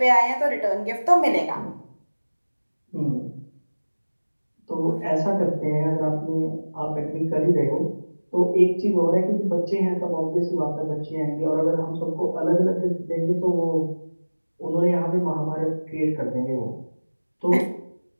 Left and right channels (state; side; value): inverted; both; correlation -1.00